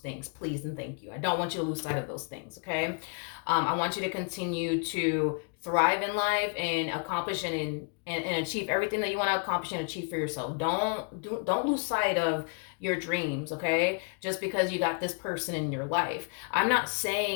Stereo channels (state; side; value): quieter; right; 38.4 dB